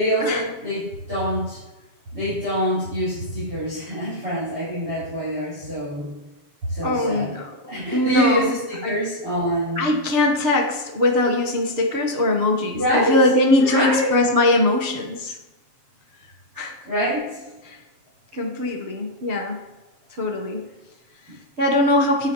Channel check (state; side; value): late; left; 7.4 ms